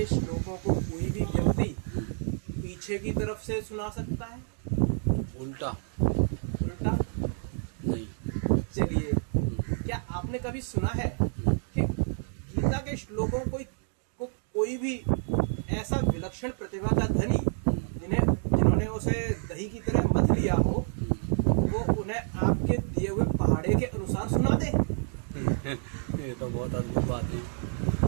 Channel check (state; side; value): silent; left; 59 dB below the other